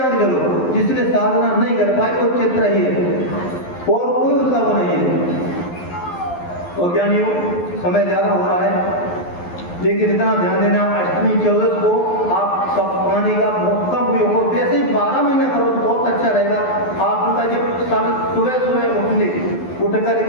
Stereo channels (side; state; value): right; late; 11 ms